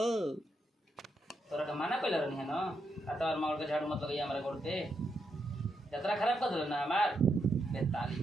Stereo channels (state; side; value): normal; both; correlation 0.82